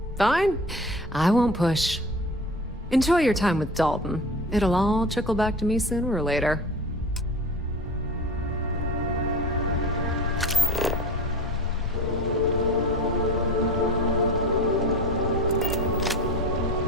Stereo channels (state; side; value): normal; both; correlation 0.35